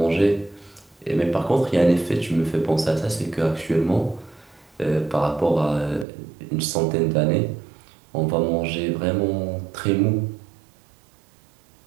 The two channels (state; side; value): drops out; left; at 6.1 s